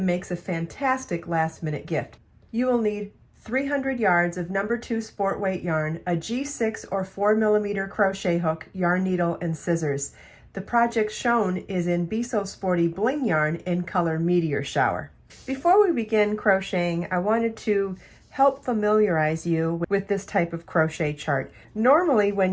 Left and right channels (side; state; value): both; identical; correlation 1.00